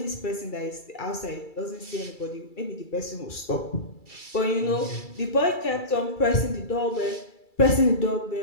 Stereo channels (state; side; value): late; right; 2.3 ms